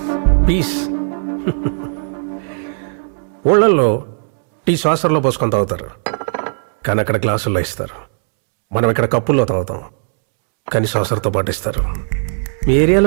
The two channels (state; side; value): silent; left; digital silence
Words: పీస్. ఊళ్ళల్లో టీ శ్వాసంలో పోసుకొని తాగుతారు, కానీ అక్కడ గ్లాసుల్లో ఇస్తారు. మనం ఇక్కడ కప్పుల్లో తాగుతాం, కానీ శ్వాసంతో పాటు ఇస్తారు. మీ